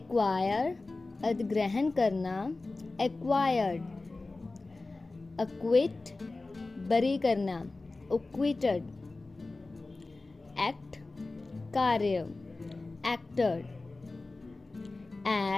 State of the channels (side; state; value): right; quieter; 3.3 dB